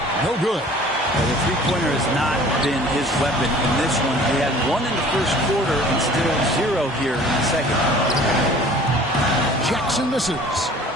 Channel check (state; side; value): normal; both; correlation 0.49